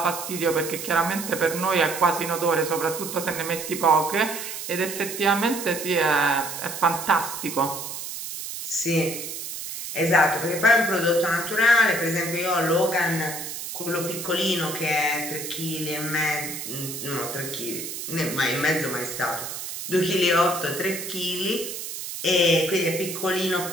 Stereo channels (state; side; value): noise; right; hiss, 7 dB below the sound